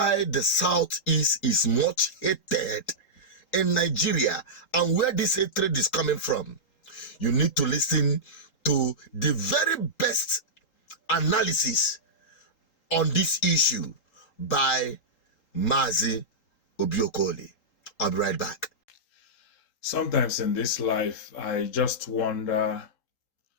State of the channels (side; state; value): right; late; 3.8 ms